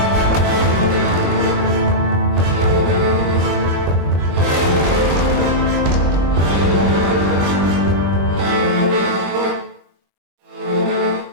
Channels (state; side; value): late; left; 21 ms